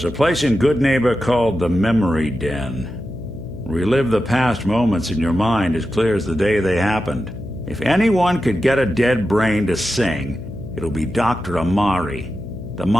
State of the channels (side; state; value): left; noise; hum, 12 dB below the sound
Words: a place in Good Neighbor called the Memory Den. Relive the past moments in your mind as clear as the day they happened. If anyone could get a dead brain to sing, it'll be Dr. Amari, the